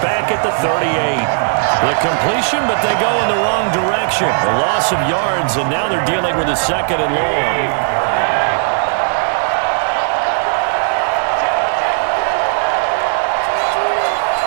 back at the 38. The completion, but they go in the wrong direction. A loss of yards, and now they're dealing with a 2nd and long.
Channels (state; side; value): silent; left; digital silence